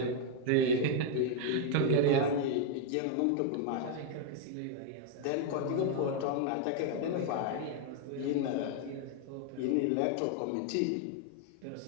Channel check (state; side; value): different; both; correlation 0.00